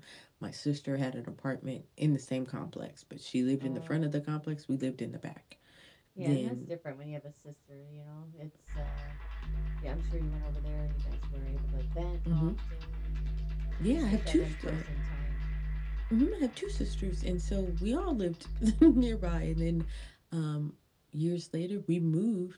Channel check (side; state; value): both; identical; correlation 1.00